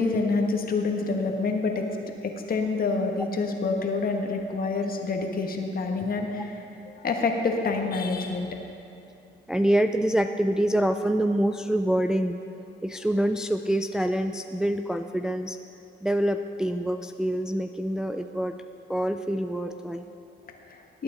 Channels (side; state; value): both; normal; correlation 0.77